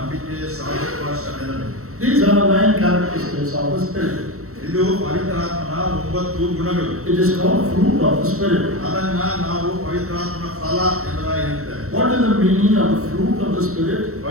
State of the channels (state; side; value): late; left; 0.64 ms